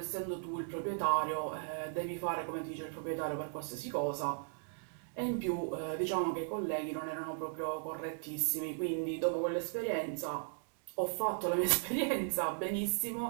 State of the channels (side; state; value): left; silent; digital silence